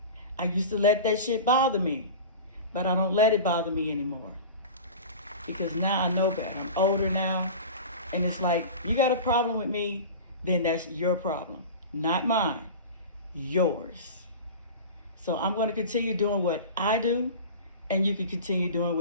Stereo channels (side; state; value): both; inverted; correlation -0.33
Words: I used to let that shit bother me, but I don't let it bother me anymore. Because now I know better. I'm older now, and it's like, you got a problem with me, then that's your problem, not mine, yours. So I'm going to continue doing what I do, and you can continue doing